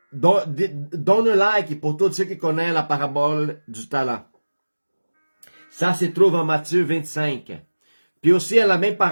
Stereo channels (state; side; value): inverted; both; correlation -1.00